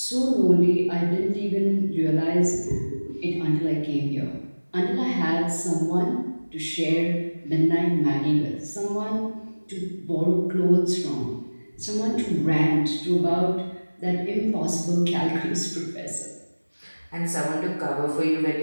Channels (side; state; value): both; inverted; correlation -1.00